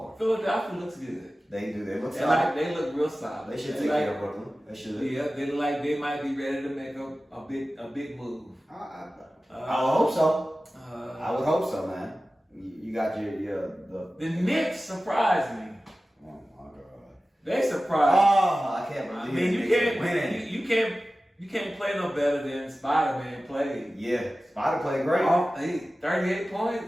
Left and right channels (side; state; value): both; normal; correlation 0.96